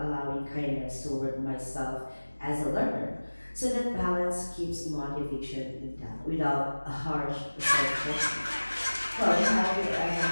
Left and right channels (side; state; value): both; inverted; correlation -1.00